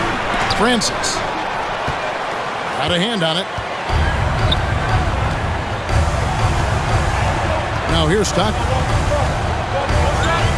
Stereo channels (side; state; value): both; identical; correlation 1.00